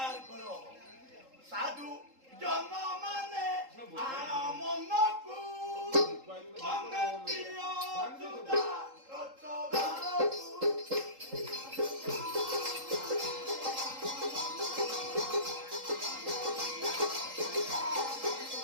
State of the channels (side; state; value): left; late; 3.8 ms